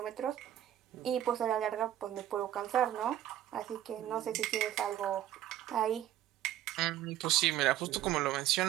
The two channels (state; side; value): quieter; left; 12.2 dB